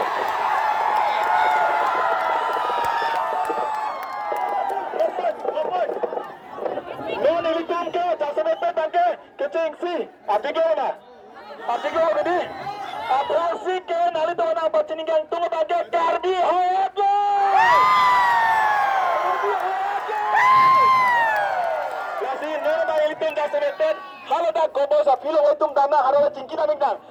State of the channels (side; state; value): both; identical; correlation 1.00